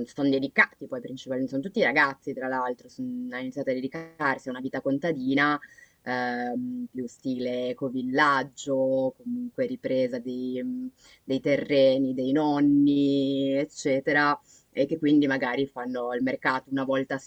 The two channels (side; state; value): both; identical; correlation 1.00